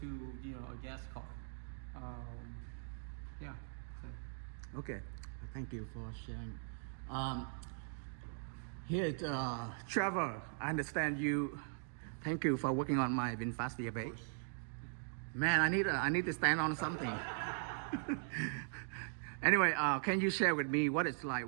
a gas car. Yeah. So. Okay, thank you for sharing. Here, Trevor, I understand you. Thank you for working on my VinFast VF8. Man, I need to stand on something. Anyway, can you share with me what it's like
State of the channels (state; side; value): silent; left; digital silence